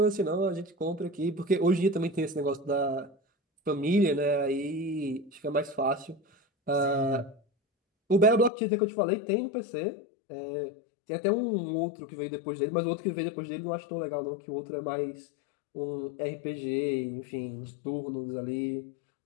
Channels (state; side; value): drops out; right; at 8.5 s